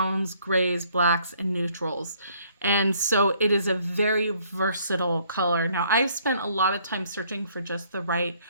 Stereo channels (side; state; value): both; inverted; correlation -0.64